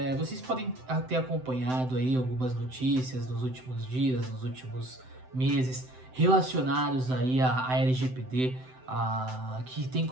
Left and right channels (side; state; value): left; late; 7.8 ms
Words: vocês podem ter acompanhado aí algumas notícias nos últimos dias, nos últimos meses, relacionados aí à LGPD, que tem